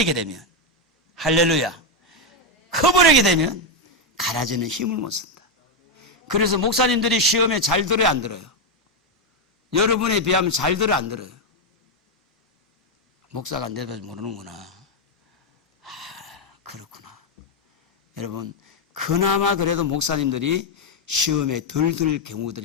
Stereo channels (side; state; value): both; normal; correlation 0.03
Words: 되면, 할렐루야, 커버리게 되면 가라지는 힘을 못 쓴다. 그래서 목사님들이 시험에 잘 들어요, 안 들어요? 여러분에 비하면 잘 들어요, 안 들어요? 목사가 안 돼도 모르는구나. 그렇구나. 여러분, 그나마 그래도 목사님들이 시험에 덜 들